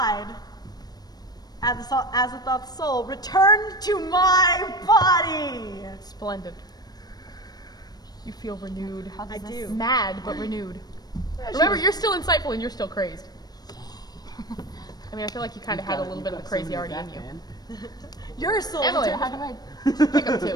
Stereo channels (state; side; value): late; right; 0.19 ms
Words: Azathoth's soul returned to my body! Splendid. You feel renewed. I do. Mad, but renewed. Remember, you're still insightful and you're still crazed. I mean, I feel like you kind of had a little bit of the crazy already in you. Your soul Emily, returned. how do I pick up 2?